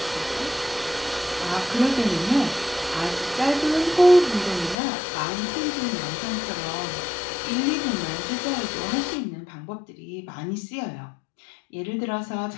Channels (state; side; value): drops out; right; at 4.8 s